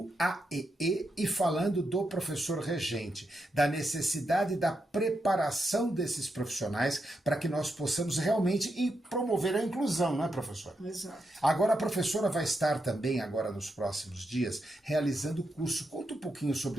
AEE e falando do professor regente, da necessidade da preparação desses profissionais para que nós possamos realmente promover a inclusão, não é, professora? Exato. Agora a professora vai estar também, agora nos próximos dias, realizando o curso. Conta um pouquinho sobre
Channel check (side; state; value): both; normal; correlation 0.84